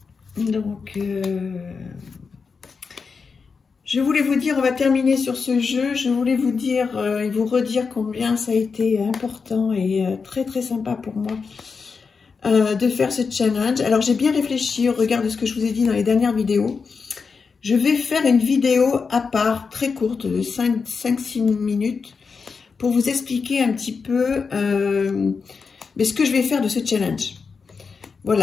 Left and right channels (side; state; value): right; quieter; 5.2 dB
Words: Donc, je voulais vous dire, on va terminer sur ce jeu. Je voulais vous dire et vous redire combien ça a été important et très très sympa pour moi de faire ce challenge. Alors, j'ai bien réfléchi au regard de ce que je vous ai dit dans les dernières vidéos. Je vais faire une vidéo à part, très courte, de 5-6 minutes, pour vous expliquer un petit peu ce que je vais faire de ce challenge.